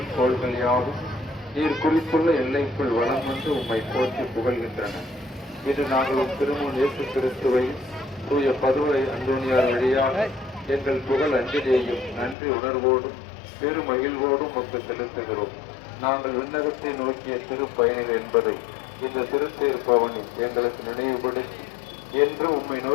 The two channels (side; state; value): right; drops out; at 12.4 s